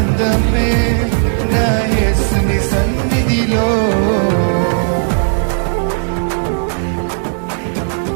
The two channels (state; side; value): silent; left; digital silence